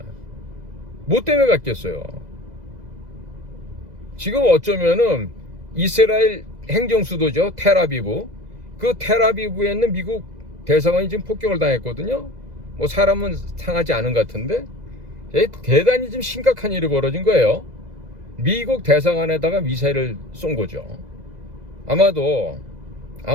뭐 때문에 갔겠어요? 지금 어쩌면은 이스라엘 행정수도죠, 텔아비브. 그 텔아비브에 있는 미국 대사관이 지금 폭격을 당했거든요. 뭐 사람은 상하지 않은 것 같은데 대단히 좀 심각한 일이 벌어진 거예요. 미국 대사관에다가 미사일을 쏜 거죠.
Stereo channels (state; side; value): late; left; 2.0 ms